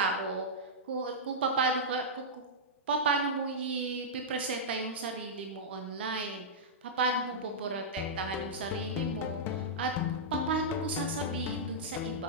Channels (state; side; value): normal; both; correlation -0.11